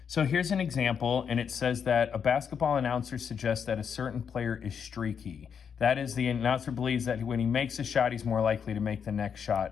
So here's an example, and it says that a basketball announcer suggests that a certain player is streaky. That is, the announcer believes that when he makes a shot, he's more likely to make the next shot,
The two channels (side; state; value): right; quieter; 7.1 dB